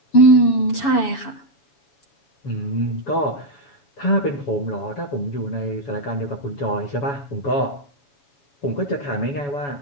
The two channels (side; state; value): right; late; 7.0 ms